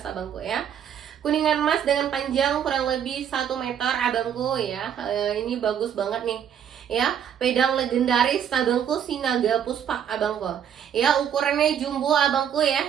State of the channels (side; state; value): left; quieter; 8.9 dB